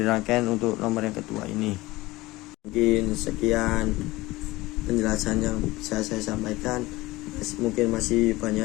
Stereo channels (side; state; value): right; quieter; 19.7 dB